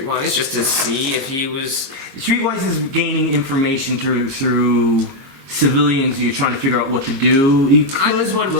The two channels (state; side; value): late; left; 22 ms